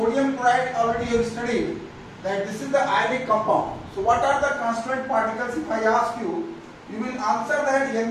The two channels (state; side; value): identical; both; correlation 1.00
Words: already you have studied that this is the ionic compound. So what are the constituent particles? If I ask you, you will answer that Na